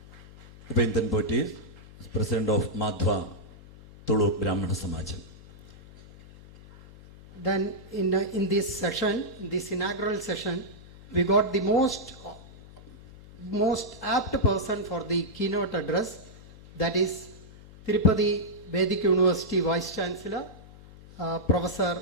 Upendran Poti is President of Madhva Tulu Brahmana Samajam. Then in this session, this inaugural session, we got the most apt person for the keynote address, that is Tirupati Vedic University Vice Chancellor, Professor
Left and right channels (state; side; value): noise; left; hum, 20 dB below the sound